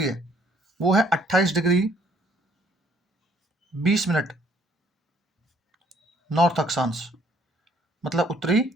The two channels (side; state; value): both; normal; correlation 0.63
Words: है वो है 28 डिग्री 20 मिनट नॉर्थ अक्षांश, मतलब उत्तरी